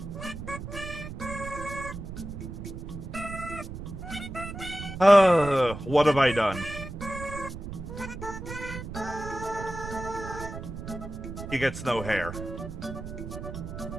What have I done? He gets no hair.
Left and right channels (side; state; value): right; noise; rumble, 9 dB below the sound